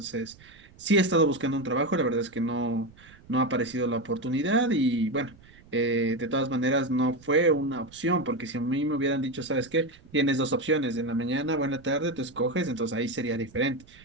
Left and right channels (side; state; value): right; noise; rumble, 25 dB below the sound